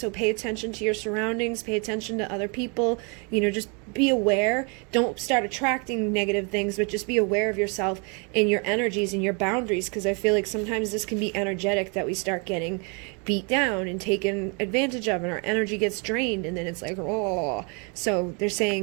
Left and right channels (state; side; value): quieter; left; 34.2 dB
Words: pay attention to your surroundings, pay attention to other people, just be aware. Don't start attracting negative things, but just be aware of yourself and your energies and your boundaries, because I feel like sometimes this can be energetic, that we start getting beat down and taken advantage of, and our energy gets drained, and then it's like, oh. So they're